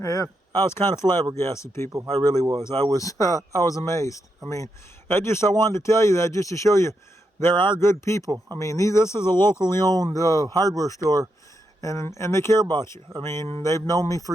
I was kind of flabbergasted, people. I really was. I was amazed. I mean, I wanted to tell you that just to show you there are good people. I mean, this is a locally owned hardware store, and they care about you. I mean, they've known me for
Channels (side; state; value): both; normal; correlation 0.83